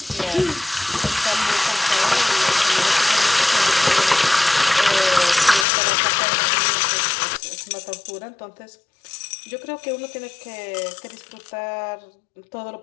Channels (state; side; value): drops out; right; at 5.7 s